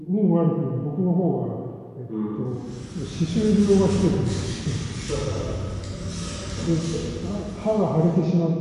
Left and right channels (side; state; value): both; identical; correlation 1.00